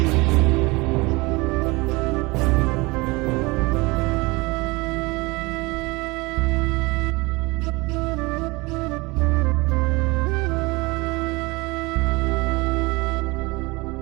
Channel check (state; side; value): quieter; left; 24.4 dB